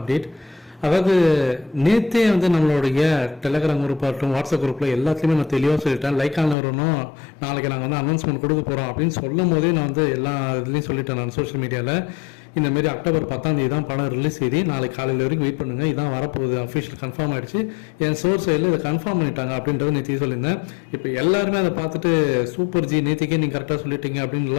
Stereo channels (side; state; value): right; drops out; at 6.6 s